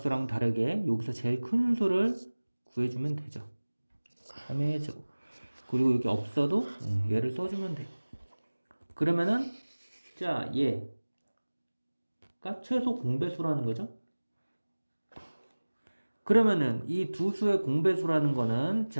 다르게 여기서 제일 큰 수를 구해주면 되죠. 3의 제곱. 그리고 여기 없어도 얘를 써주면 돼. 그러면은 자 얘가 최소 공배수라는 거죠. 그러면은 이 두 수의 공배수라는 거는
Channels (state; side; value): inverted; both; correlation -1.00